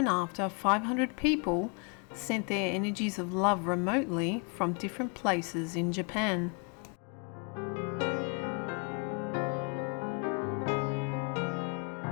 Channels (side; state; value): right; quieter; 35.8 dB